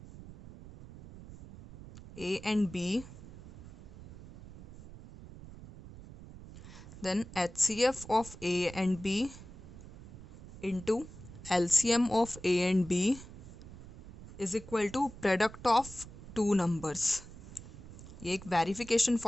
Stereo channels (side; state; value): right; noise; rumble, 16 dB below the sound